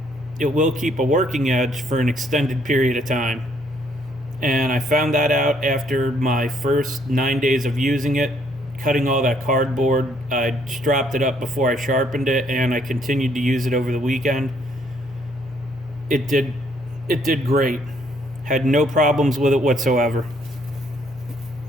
it will keep a working edge for an extended period of time. And I found that out after my first 9 days of using it, cutting all that cardboard. I stropped it up before I sharpened it, and I continued to use it over the weekend. It did great. Had no problems with it whatsoever.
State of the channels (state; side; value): noise; left; hum, 24 dB below the sound